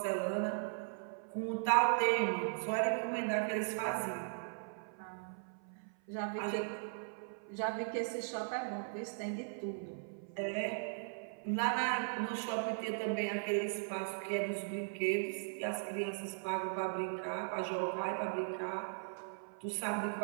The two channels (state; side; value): silent; left; 52 dB below the other